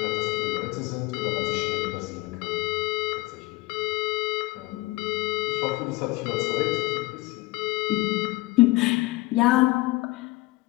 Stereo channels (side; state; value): right; quieter; 21.4 dB